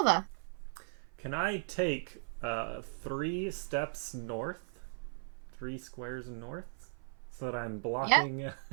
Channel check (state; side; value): silent; left; 53 dB below the other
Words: Can I take 3 steps north? 3 squares north? So that I'm blocking